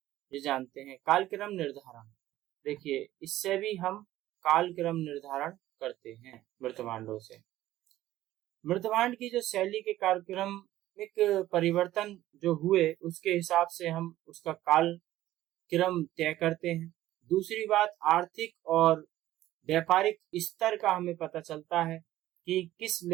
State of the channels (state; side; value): quieter; left; 14.6 dB